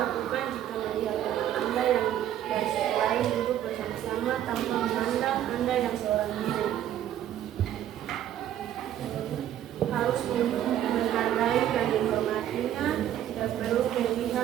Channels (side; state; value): left; quieter; 11.4 dB